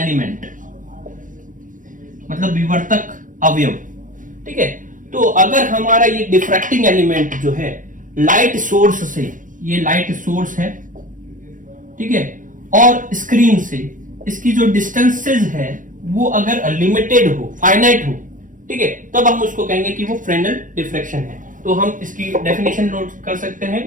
मतलब विवर्तक अवयव। ठीक है, तो अगर हमारा ये डिफ्रैक्टिंग एलिमेंट जो है लाइट सोर्स से, ये लाइट सोर्स है, ठीक है, और स्क्रीन से इसकी जो डिस्टेंसेस है वो अगर लिमिटेड हो, फाइनाइट हो, ठीक है, तब हम उसको कहेंगे कि वो फ्रेनेल डिफ्रैक्शन है। तो हम इसकी डेफिनेशन नोट कर सकते हैं,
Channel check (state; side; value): late; left; 0.38 ms